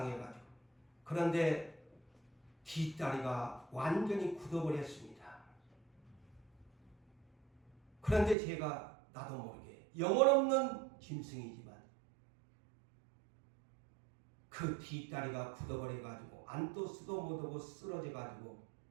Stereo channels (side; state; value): left; drops out; at 8.3 s